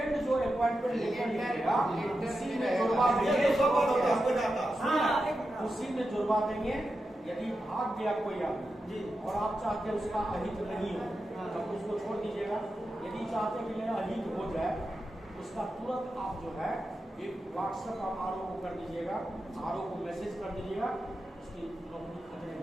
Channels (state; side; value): normal; both; correlation 0.89